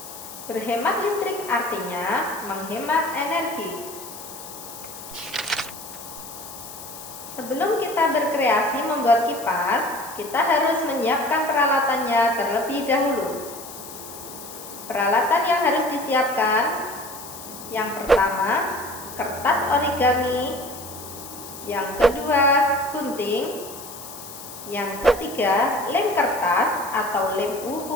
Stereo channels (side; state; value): left; noise; hiss, 13 dB below the sound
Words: Berhemat listrik artinya menghemat energi. Sebelum kita berkreasi membuat kipas, kita harus menyiapkan peralatannya terlebih dahulu. Peralatan yang harus disiapkan: yang pertama, kertas origami, yang kedua gunting, yang ketiga lem kertas atau lem